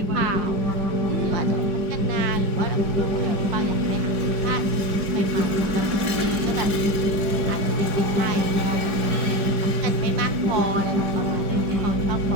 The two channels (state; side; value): late; left; 4.8 ms